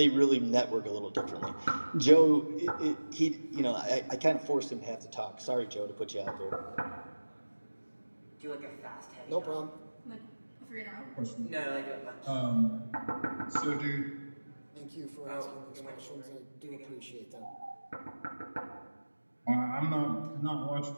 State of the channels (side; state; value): both; inverted; correlation -1.00